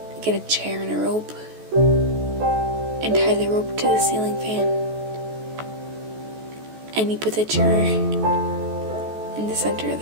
get a chair and a rope and tie the rope to the ceiling fan. And you put the chair in the center of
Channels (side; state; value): left; late; 14 ms